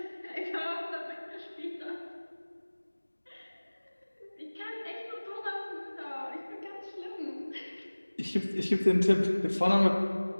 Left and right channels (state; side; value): inverted; both; correlation -1.00